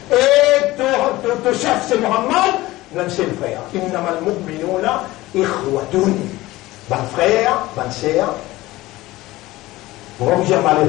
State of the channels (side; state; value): right; quieter; 18.3 dB